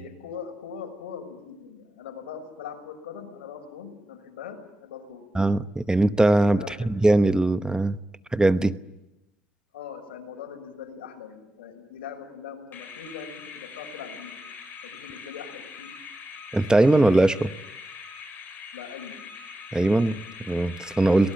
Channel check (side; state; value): both; normal; correlation 0.93